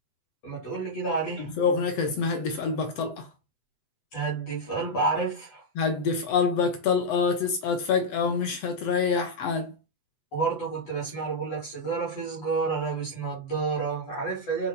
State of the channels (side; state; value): right; late; 8.0 ms